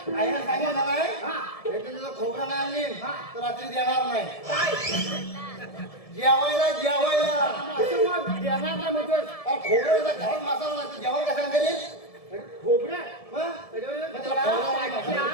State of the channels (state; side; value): late; right; 1.7 ms